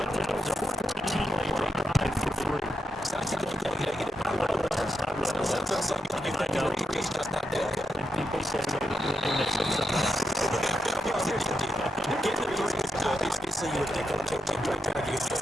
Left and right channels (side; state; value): both; normal; correlation 0.84